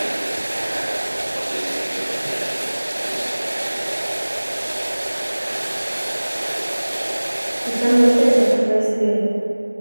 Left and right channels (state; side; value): inverted; both; correlation -1.00